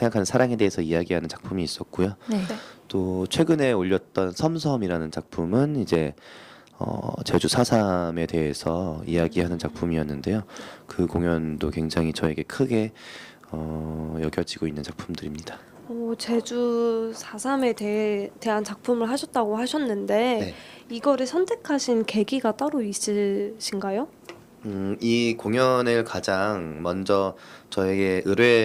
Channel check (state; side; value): identical; both; correlation 1.00